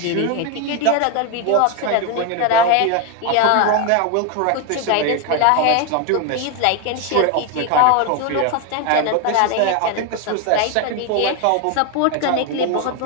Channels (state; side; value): different; both; correlation 0.01